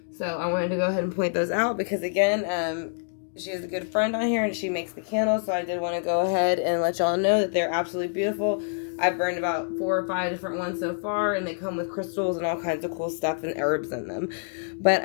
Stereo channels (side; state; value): right; silent; digital silence